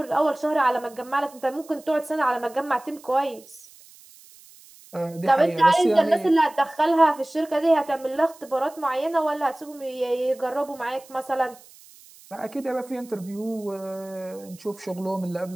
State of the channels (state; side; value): noise; right; hiss, 23 dB below the sound